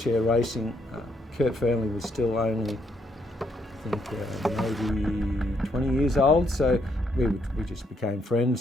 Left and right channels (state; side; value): normal; both; correlation 0.74